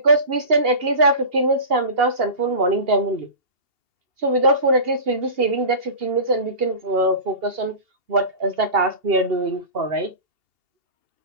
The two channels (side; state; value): left; late; 2.8 ms